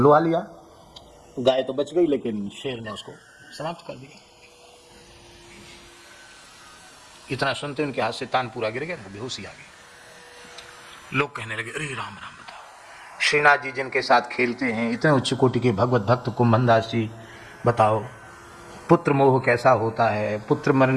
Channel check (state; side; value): identical; both; correlation 1.00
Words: लिया। गाय तो बच गई लेकिन शेर ने उसको समाप्त कर दिया। इतना सुनते उनके हाथ से तान पूरा गिर गया, बेहोशी आ गई। लोग कहने लगे, अरे राम राम, बताओ श्रीनाथ जी जिनके साथ खेलते हैं, इतने उच्च कोटि के भगवत भक्त कुंभनदास जी, बताओ पुत्र मोह कैसा होता है। पुत्र